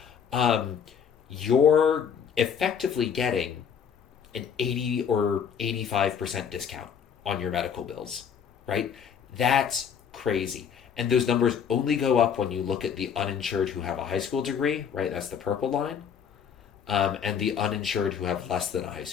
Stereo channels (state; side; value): quieter; right; 7.5 dB